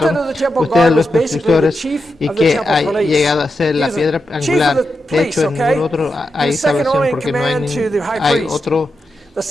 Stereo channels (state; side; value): normal; both; correlation 0.88